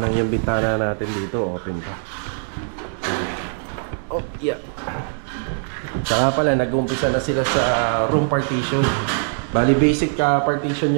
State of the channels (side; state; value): left; silent; 64 dB below the other